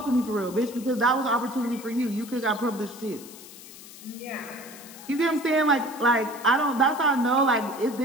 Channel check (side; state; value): left; noise; hiss, 17 dB below the sound